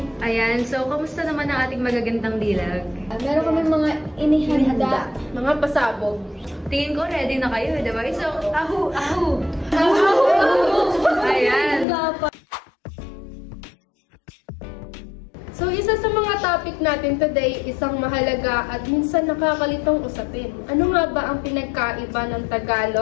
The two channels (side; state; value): right; drops out; at 11.9 s